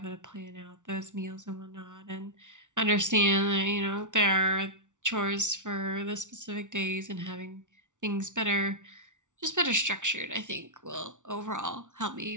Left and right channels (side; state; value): left; late; 0.86 ms